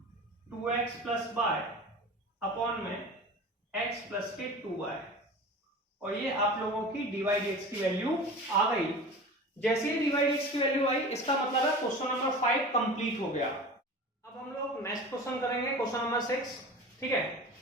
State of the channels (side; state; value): both; normal; correlation 0.35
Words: 2x प्लस y अपॉन में x प्लस के 2y, और ये आप लोगों की dy dx की वैल्यू आ गई। जैसे ही dy dx की वैल्यू आई, इसका मतलब है क्वेश्चन नंबर 5 कंप्लीट हो गया। अब हम लोग नेक्स्ट क्वेश्चन करेंगे, क्वेश्चन नंबर 6। ठीक है,